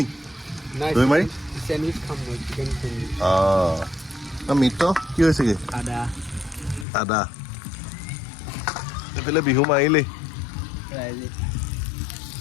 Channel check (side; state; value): right; drops out; at 6.9 s